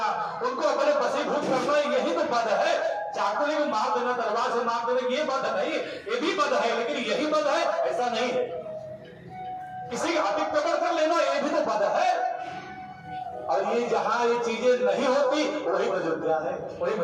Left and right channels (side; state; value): both; identical; correlation 1.00